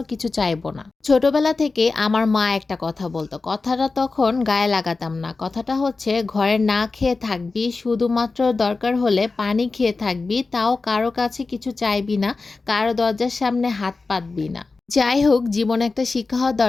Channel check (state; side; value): quieter; right; 3.9 dB